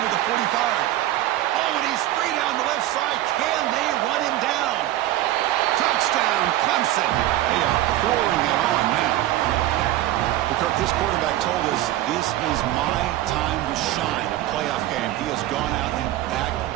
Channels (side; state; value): left; quieter; 14.6 dB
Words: at the 45. Oh, and he's free down the left side. Can they run him down? Touchdown, Clemson. They are pouring it on now. Kirk, this quarterback told us this is my time to shine. A playoff game. He has gone out and backed